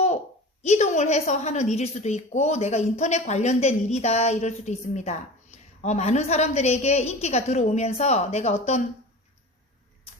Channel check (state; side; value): normal; both; correlation 0.35